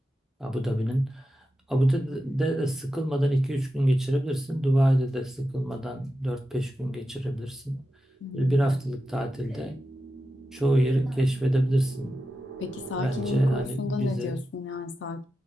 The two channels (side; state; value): both; normal; correlation 0.90